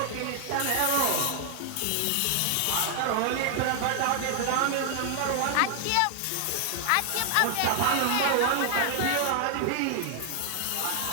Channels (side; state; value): both; different; correlation 0.00